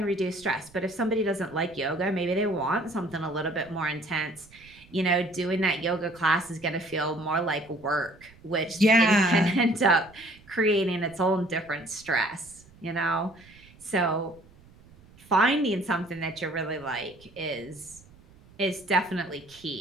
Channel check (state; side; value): noise; right; rumble, 25 dB below the sound